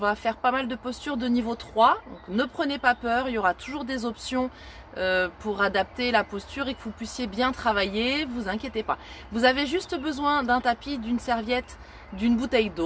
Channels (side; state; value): both; identical; correlation 1.00